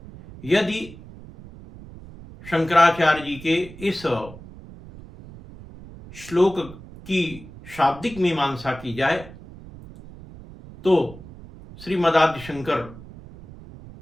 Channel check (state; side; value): noise; right; rumble, 17 dB below the sound